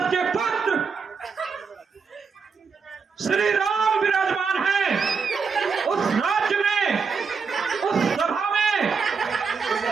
के पुत्र श्री राम विराजमान है, उस राज्य में, उस सभा में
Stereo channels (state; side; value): quieter; left; 5.4 dB